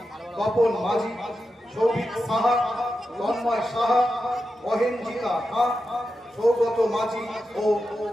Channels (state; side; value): normal; both; correlation 0.89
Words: তপন মাঝি, সৌভিক সাহা, তন্ময় সাহা, অহেঞ্জিতা খাঁ, সৌগত মাঝি ও